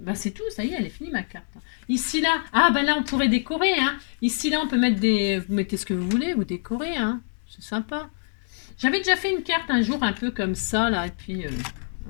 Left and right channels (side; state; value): right; silent; 60 dB below the other